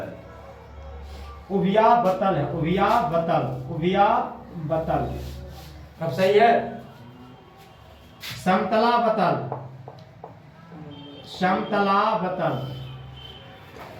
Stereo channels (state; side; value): identical; both; correlation 1.00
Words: उभयावतल है। उभयावतल अब सही है। समतलावतल।